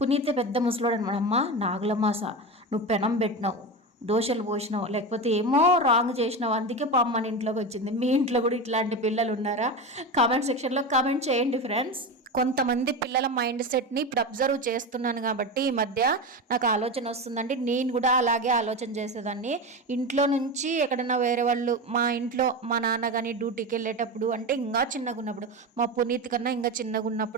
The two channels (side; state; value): both; normal; correlation 0.22